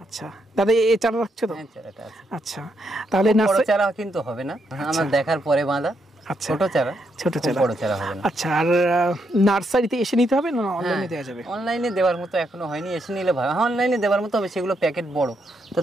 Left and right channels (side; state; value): both; normal; correlation 0.78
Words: আচ্ছা দাদা, এই চারা রাখছো তো? আচ্ছা, তাহলে বড় চারা কিন্তু হবে না, আমার দেখার পরে বাঁধা। আচ্ছা, ছোট চারা, বড় চারা হবে না। আচ্ছা, আর নার্সারিতে এসে নিতে হবে না অনলাইনে দেওয়া যাবে? অনলাইনে দেওয়ার মতো এখনো হয়নি, এসে নিলে ভালো। অনলাইনে দেওয়ার মতো হবে, সেগুলো প্যাকেট বড়,